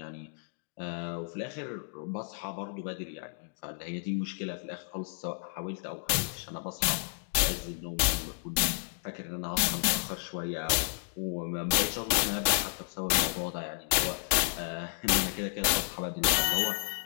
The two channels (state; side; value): silent; right; digital silence